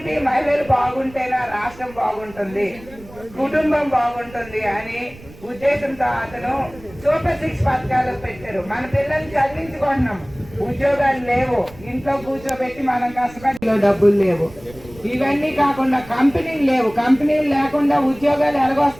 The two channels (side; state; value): right; noise; rumble, 20 dB below the sound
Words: మహిళలు బాగుంటేనా రాష్ట్రం బాగుంటుంది, కుటుంబం బాగుంటుంది అని ఉద్దేశంతో అతను సూపర్ 6 పథకాలు పెట్టారు. మన పిల్లల్ని చదివించుకుంటున్నాం, ఉద్యోగాలు లేవు, ఇంట్లో కూర్చోబెట్టి మనం కష్టపడి డబ్బులు లేవు. ఇవన్నీ కాకుండా కంపెనీలు లేవు. కంపెనీలు లేకుండా ఉద్యోగాలు